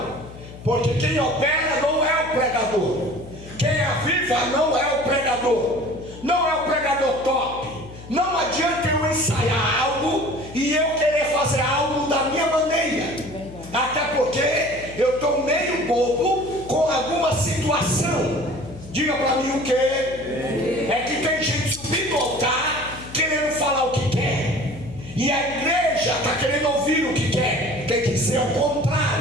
Porque quem opera não é o pregador. Quem aviva não é o pregador. Não é o pregador top. Não adianta eu ensaiar algo e eu querer fazer algo da minha maneira. Até porque eu estou meio bobo com alguma situação. Diga para mim o que? É que tem gente subindo ao altar querendo falar o que quer. E a igreja está querendo ouvir o que quer. Tem que ser o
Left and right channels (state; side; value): noise; left; hum, 16 dB below the sound